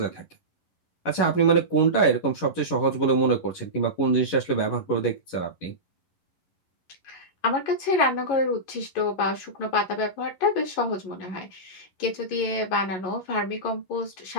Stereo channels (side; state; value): right; late; 11 ms